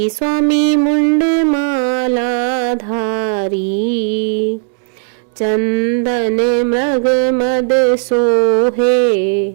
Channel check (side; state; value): left; silent; digital silence